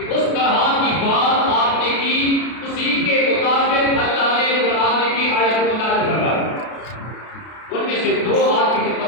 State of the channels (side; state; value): right; late; 33 ms